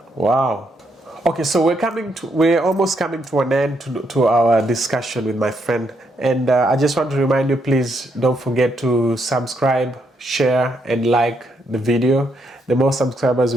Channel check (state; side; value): normal; both; correlation 0.76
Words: Wow. Okay, so we're almost coming to an end to our discussion with my friend. And I just want to remind you, please don't forget to subscribe, share, and like the video. The more subscribers